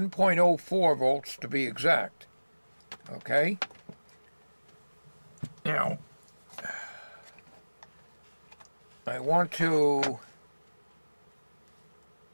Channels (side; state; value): both; inverted; correlation -1.00